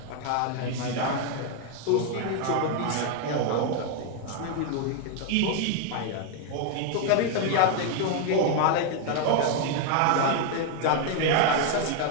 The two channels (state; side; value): different; both; correlation 0.00